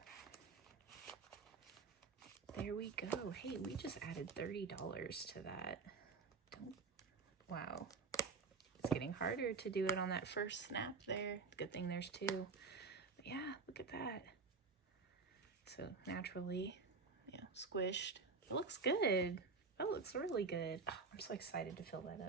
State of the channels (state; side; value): quieter; left; 4.5 dB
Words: there we go. Hey, we just added $30 to that. Wow. It's getting harder to do it on that first snap there. Good thing there's two. But yeah, look at that. So naturally, squished. It looks good. That looks really good. Oh, I'm so excited to fill that